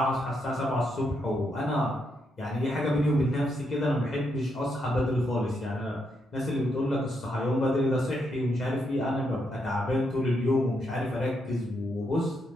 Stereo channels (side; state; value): both; normal; correlation 0.79